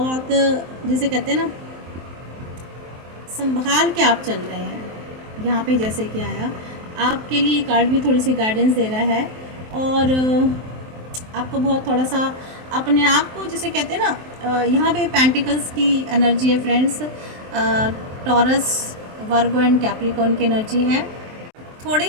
जिसे कहते हैं ना, संभाल के आप चल रहे हैं। यहाँ पे जैसे कि आया, आपके लिए कार्ड भी थोड़ी सी गाइडेंस दे रहा है, और आपको बहुत थोड़ा सा अपने आप को, जिसे कहते हैं ना, यहाँ पे पेंटिकल्स की एनर्जी है friends, taurus, Virgo and Capricorn की एनर्जी है। थोड़े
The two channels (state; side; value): late; left; 23 ms